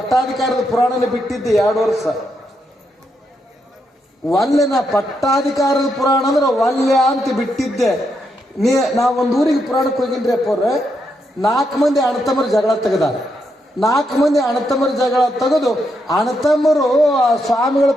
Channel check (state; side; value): normal; both; correlation 0.81